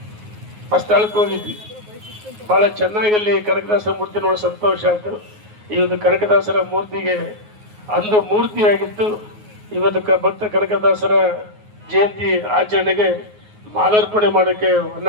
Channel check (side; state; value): left; late; 9.5 ms